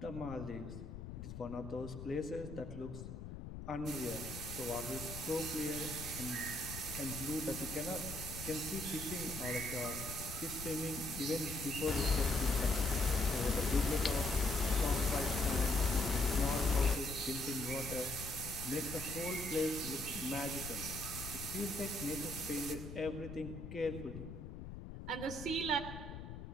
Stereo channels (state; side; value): noise; left; rumble, 9 dB below the sound